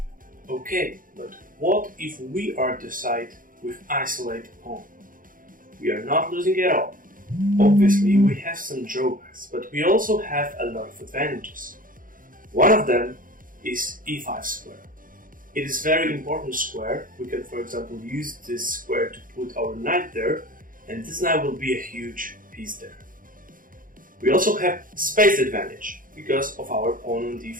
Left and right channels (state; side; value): late; left; 0.40 ms